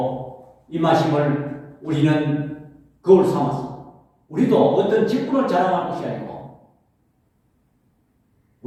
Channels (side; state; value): both; identical; correlation 1.00